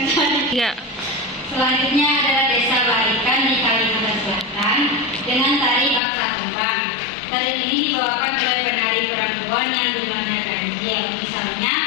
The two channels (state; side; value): drops out; right; at 6.0 s